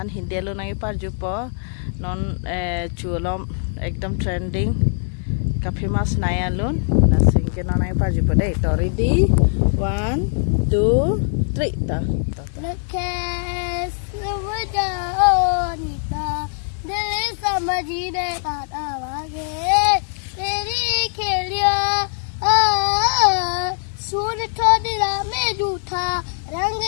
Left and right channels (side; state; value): right; silent; 65 dB below the other